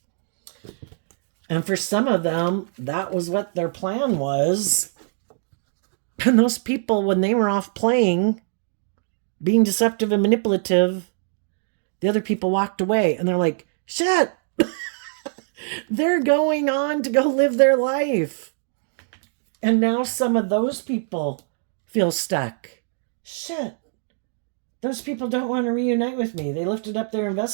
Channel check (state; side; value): silent; left; digital silence